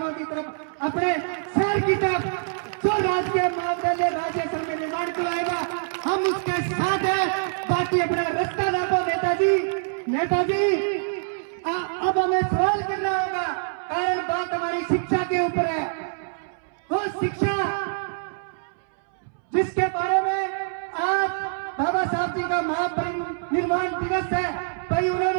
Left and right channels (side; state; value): left; silent; 62 dB below the other